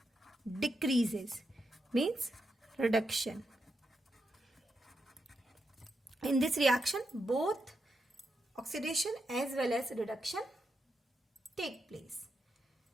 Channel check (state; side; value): normal; both; correlation 0.84